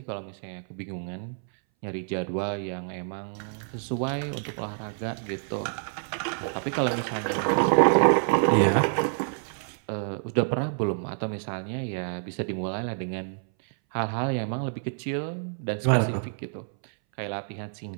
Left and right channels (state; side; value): silent; left; 59 dB below the other